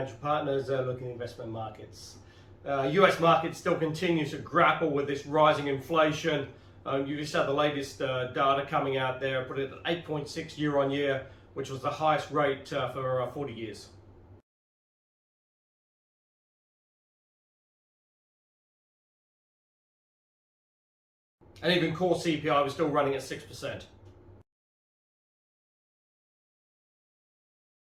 Partners, looking at investment markets. US market still continues to grapple with this rising inflation. You just had the latest data coming out there, put it at 8.6 year on year, which was the highest rate for 40 years. And even core CPI was still running at 6%.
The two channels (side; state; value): both; identical; correlation 1.00